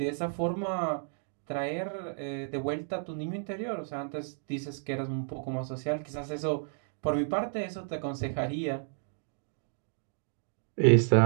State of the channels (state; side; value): silent; left; digital silence